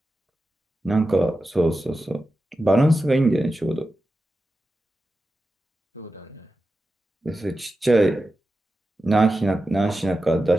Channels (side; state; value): both; normal; correlation 0.92